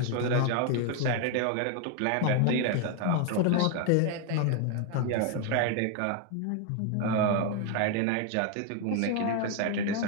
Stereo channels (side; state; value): both; different; correlation 0.01